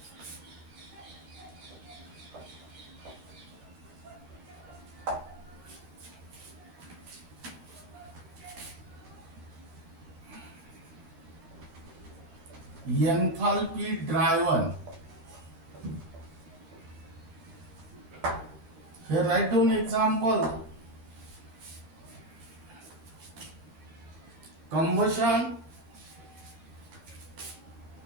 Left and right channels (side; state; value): left; late; 13 ms